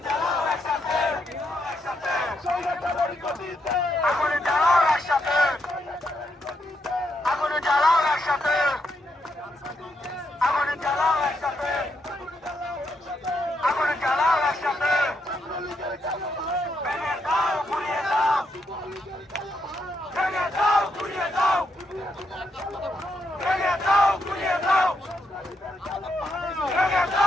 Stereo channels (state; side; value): normal; both; correlation 0.79